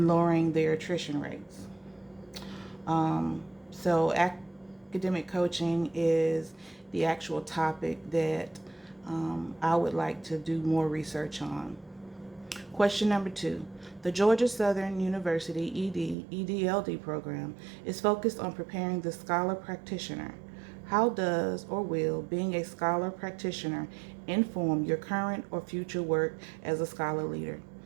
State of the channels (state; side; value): drops out; left; at 16.2 s